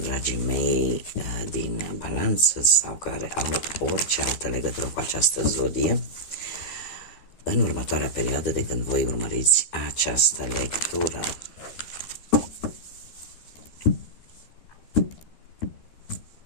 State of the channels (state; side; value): late; right; 12 ms